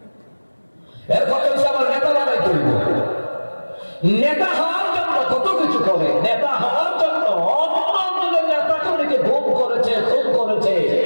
এর কথা হচ্ছে আমার নেতা বানাই তুলব। নেতা হওয়ার জন্য কত কিছু করে। নেতা হওয়ার জন্য অন্যদের নেতা কর্মীকে ভোগ করেছে, খুন করেছে,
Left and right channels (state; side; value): inverted; both; correlation -1.00